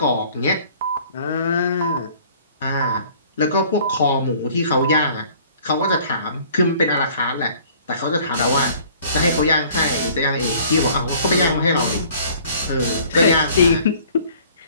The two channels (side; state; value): both; inverted; correlation -0.53